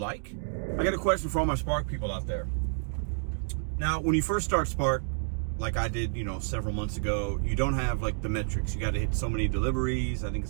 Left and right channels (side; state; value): left; silent; digital silence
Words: I got a question for all my Spark people out there. Now, when you first start Spark, like I did, several months ago, you don't have like the metrics. You got to hit so many deliveries. I think